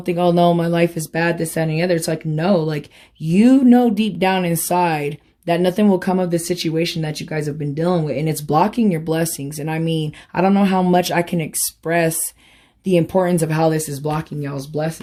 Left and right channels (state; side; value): identical; both; correlation 1.00